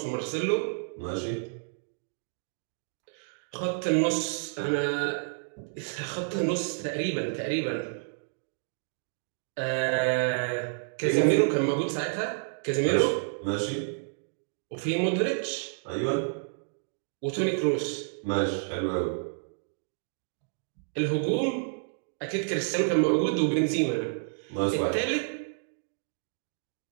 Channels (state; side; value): silent; left; digital silence